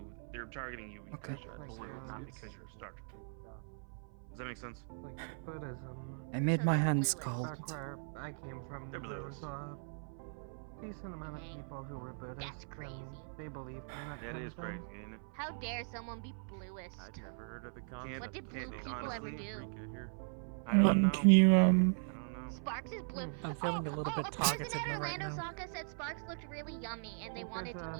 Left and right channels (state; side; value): silent; left; 52 dB below the other